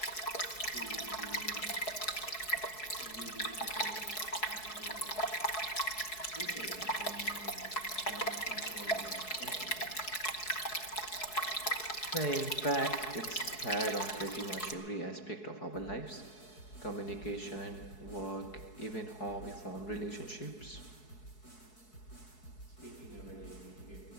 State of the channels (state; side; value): late; right; 4.7 ms